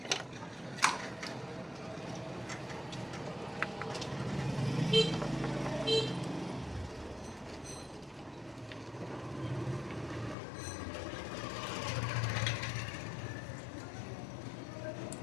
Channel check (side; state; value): right; drops out; at 10.4 s